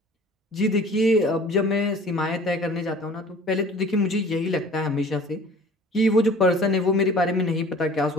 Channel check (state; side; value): normal; both; correlation 0.47